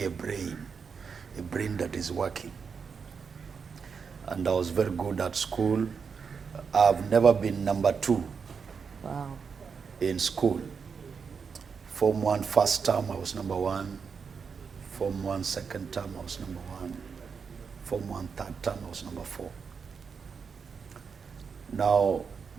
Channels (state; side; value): quieter; left; 5.9 dB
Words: a brain that is working. And I was very good at school. I've never been number 2 in school. Form 1 first term, I was number 1. Form 1 second term, I was number 1. Form 1 third term, I was number 4. Now,